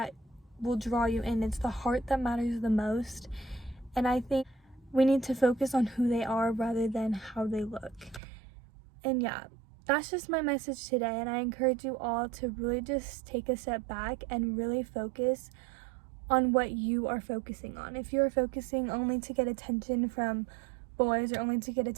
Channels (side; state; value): left; drops out; at 8.2 s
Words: will draw you in. It's the heart that matters the most. And I think we need to focus on who they are rather than how they look. And yeah, that's just my message today, and I encourage you all to really just take a step back and really focus on what you are focusing on. If you're focusing only to get attention from boys, or only to get